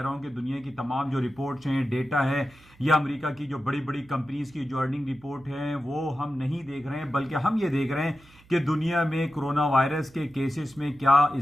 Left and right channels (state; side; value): noise; right; hum, 27 dB below the sound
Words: ہوں کہ دنیا کی تمام جو رپورٹس ہیں، ڈیٹا ہے، یا امریکہ کی جو بڑی بڑی کمپنیز کی جو ارننگ رپورٹ ہیں وہ ہم نہیں دیکھ رہے ہیں، بلکہ ہم یہ دیکھ رہے ہیں کہ دنیا میں کرونا وائرس کے کیسز میں کیا